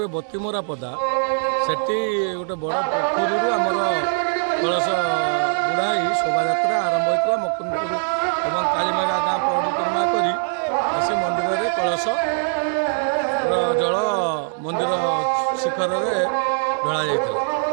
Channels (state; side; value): silent; left; digital silence